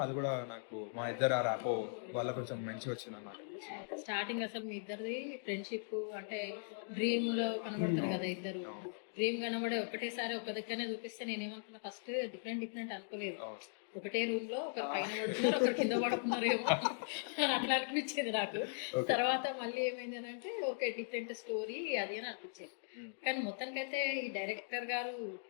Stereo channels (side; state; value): right; silent; digital silence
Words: అది కూడా నాకు మా ఇద్దరు ఆ ర్యాపో వల్ల కొంచెం మంచిగా వచ్చింది అన్నమాట. స్టార్టింగ్ అసలు మీ ఇద్దరిది ఫ్రెండ్షిప్ అంటే డ్రీమ్ లో కనబడతారు కదా ఇద్దరు. డ్రీమ్ కనబడే ఒకటేసారి ఒక దగ్గరనే చూపిస్తే నేనేమనుకున్నా ఫస్ట్ డిఫరెంట్ అనుకోలేదు. ఒకటే రూమ్ లో ఒకరు పైన పడుతున్నారు, ఒకరు కింద పడుతున్నారేమో అట్లా అనిపించేది నాకు. తర్వాత మళ్ళీ ఏమైంది అని అంటే ఓకే డిఫరెంట్ స్టోరీ అది అని అనిపించేది. కానీ మొత్తానికైతే ఈ డైరెక్టర్ గారు